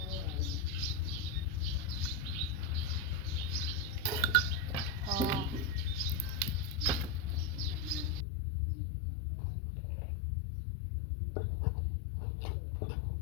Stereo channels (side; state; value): right; drops out; at 8.2 s